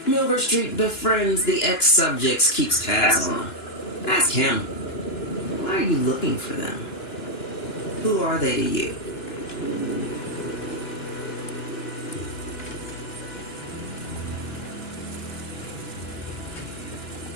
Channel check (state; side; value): late; right; 2.9 ms